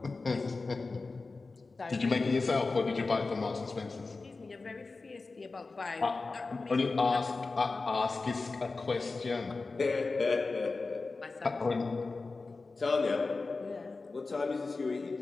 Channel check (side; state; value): right; quieter; 3.8 dB